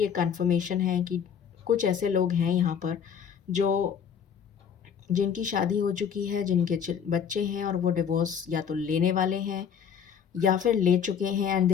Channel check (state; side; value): quieter; right; 7.6 dB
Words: कंफर्मेशन है कि कुछ ऐसे लोग हैं यहाँ पर जो जिनकी शादी हो चुकी है, जिनके बच्चे हैं, और वो डिवोर्स या तो लेने वाले हैं या फिर ले चुके हैं, and